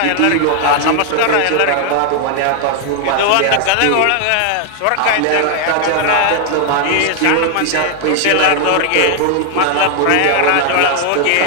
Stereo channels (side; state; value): both; different; correlation 0.00